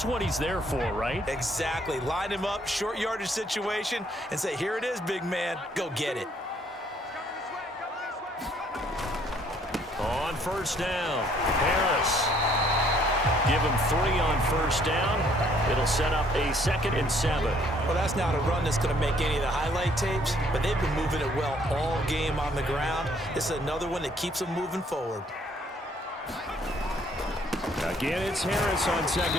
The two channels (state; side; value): normal; both; correlation 0.64